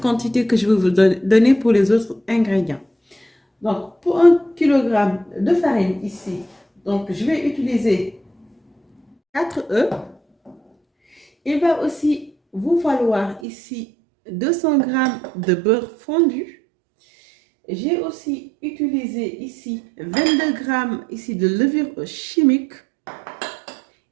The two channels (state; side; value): drops out; left; at 13.4 s